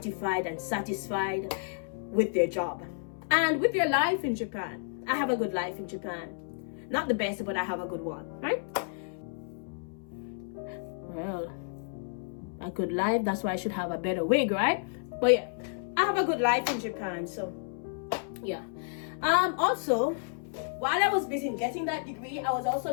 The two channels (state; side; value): silent; right; 57 dB below the other